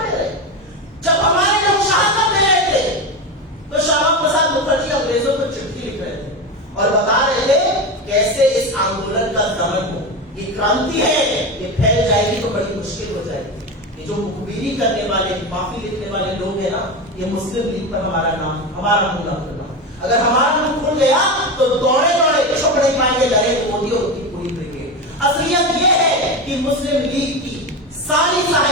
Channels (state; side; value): normal; both; correlation 0.19